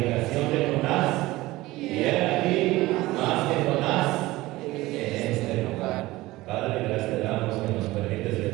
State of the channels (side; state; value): left; quieter; 18.7 dB